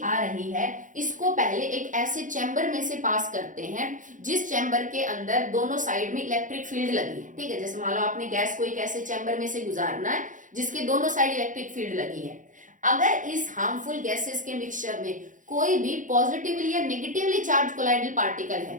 आ रही है इसको पहले एक ऐसे चैम्बर में से पास करते हैं जिस चैम्बर के अंदर दोनों साइड में इलेक्ट्रिक फील्ड लगी है। ठीक है, जैसे मान लो आपने गैस को एक ऐसे चैम्बर में से गुजारना है जिसके दोनों साइड इलेक्ट्रिक फील्ड लगी है। अगर इस हार्मफुल गैसेस के मिक्सचर में कोई भी पॉजिटिवली या नेगेटिवली चार्ज कोलाइडल पार्टिकल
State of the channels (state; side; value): late; left; 0.37 ms